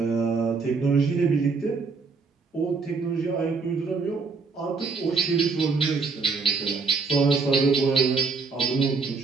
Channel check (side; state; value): left; quieter; 4.6 dB